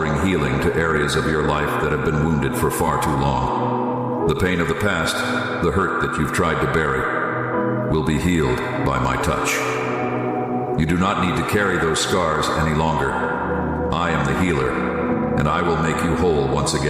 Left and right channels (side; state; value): both; identical; correlation 1.00